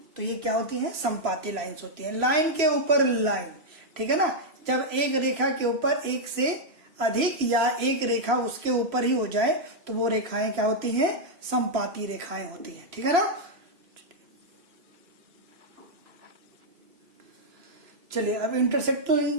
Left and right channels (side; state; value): left; late; 3.0 ms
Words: तो ये क्या होती है, संपाती लाइंस होती है। लाइन के ऊपर लाइन, ठीक है ना। जब एक रेखा के ऊपर एक से अधिक या एक रेखा उसके ऊपर ही हो जाए तो वो रेखाएं क्या होती हैं, संपाती रेखाएं होती हैं, ठीक है ना। चलिए अब